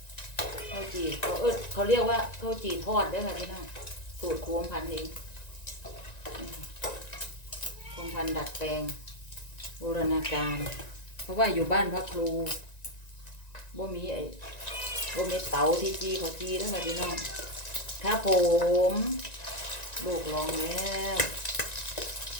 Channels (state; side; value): late; right; 1.9 ms